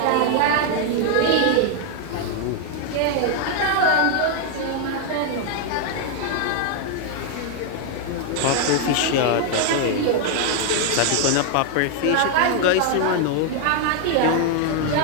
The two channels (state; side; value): different; both; correlation 0.00